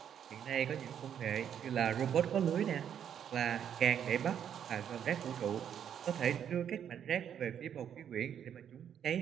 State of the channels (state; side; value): quieter; left; 9.0 dB